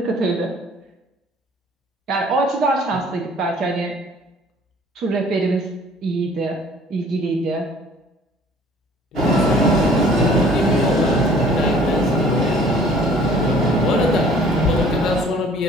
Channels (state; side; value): normal; both; correlation 0.54